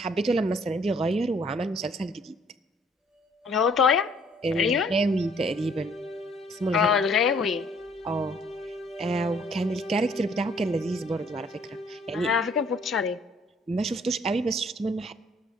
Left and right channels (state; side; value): normal; both; correlation 0.61